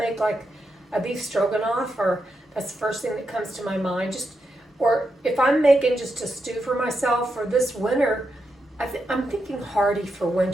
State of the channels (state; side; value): normal; both; correlation 0.85